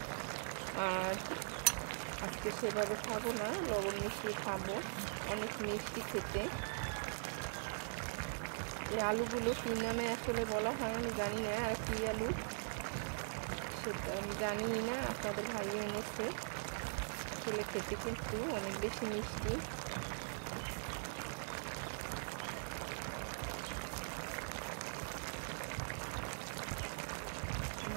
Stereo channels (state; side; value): silent; left; digital silence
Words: আর আজকে সেভাবে খাবো না, লবণ মিশিয়ে খাবো, অনেক মিষ্টি খেতে। এই আলুগুলো কি নামে আসলে বলা হয় আমি জানি না, আর কি আলু সেটা আমি জানি না আপনাদের ভাই এনেছে, আসলে খেতে কিন্তু অনেক বেশি মিষ্টি।